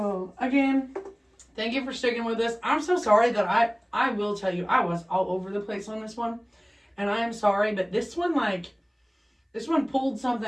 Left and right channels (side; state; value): both; identical; correlation 1.00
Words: again, thank you for sticking with us. I'm so sorry that I will tell you, I was all over the place on this one. And I am sorry, but this one pulled